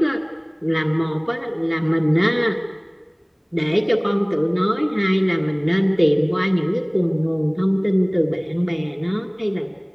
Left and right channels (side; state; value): both; identical; correlation 1.00